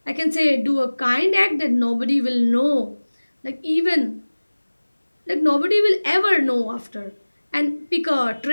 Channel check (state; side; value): inverted; both; correlation -1.00